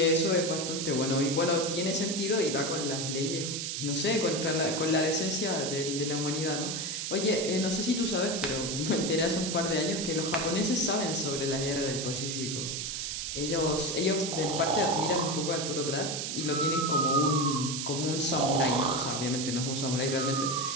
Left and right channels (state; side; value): noise; right; hiss, 3 dB below the sound